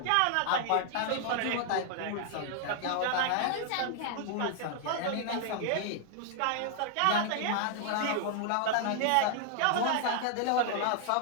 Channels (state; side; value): different; both; correlation 0.00